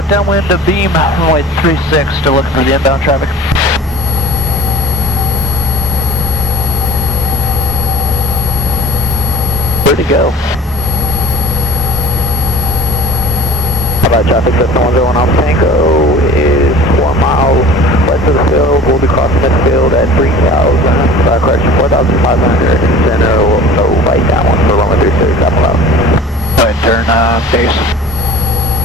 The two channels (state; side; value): normal; both; correlation 0.43